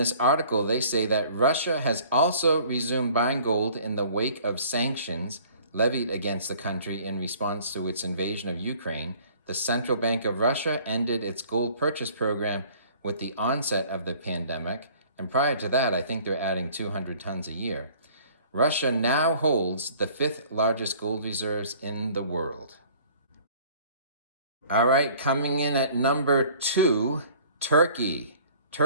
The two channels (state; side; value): inverted; both; correlation -0.53